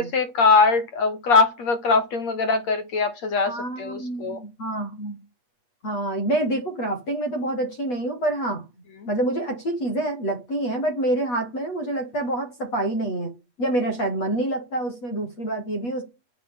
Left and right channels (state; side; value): late; right; 8.5 ms